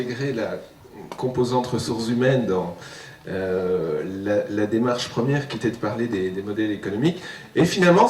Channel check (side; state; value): both; identical; correlation 1.00